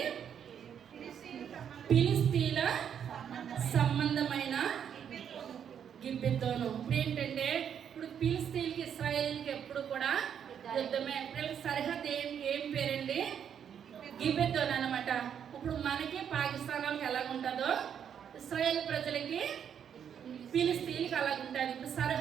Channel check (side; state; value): left; quieter; 8.4 dB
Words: ఫిలిస్తీన్ల సంబంధమైన గిబిద్దోను. ఇప్పుడు ఏంటంటే, ఇప్పుడు ఫిలిస్తీన్కి ఇశ్రాయేల్కి ఎప్పుడు కూడా యుద్ధమే. వీళ్ళకి సరిహద్దు ఏం పేరండి? గిబిద్దోను అనమాట. ఇప్పుడు మనకి పాకిస్తాన్ వాళ్ళకి ఎలాగుంటుందో ఇశ్రాయేల్ ప్రజలకి ఫిలిస్తీన్కి అలాగుంటుంది. ఇప్పుడు